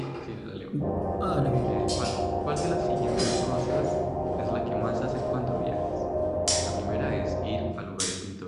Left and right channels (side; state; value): both; identical; correlation 1.00